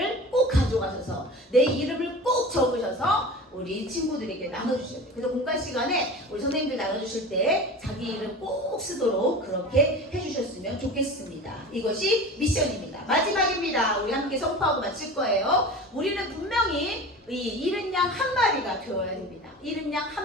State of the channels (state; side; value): normal; both; correlation 0.34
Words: 꼭 가져가셔서 내 이름을 꼭 적으셔서 우리 친구들에게 나눠주셔야 돼요. 그래서 공간 시간에 우리 선생님들 나눠주실 때 자기 이름 꼭 쓰도록 그렇게 해주셨으면 좋겠습니다. 이것이 미션입니다. 마지막입니다. 우리 함께 선포하고 마칠 거예요. 우리는 분명히 이 잃은 양 한 마리가 되어야 됩니다. 잃은 양